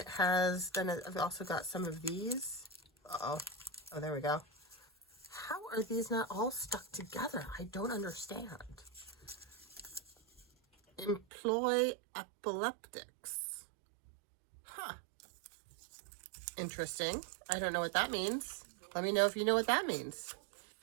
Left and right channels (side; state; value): left; drops out; at 11.2 s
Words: I've also got some of these. Oh, there we go. How are these not all stuck together? I don't understand. Employ epileptics. Huh. Interesting. I don't know what that means. Let me know if you know what that means.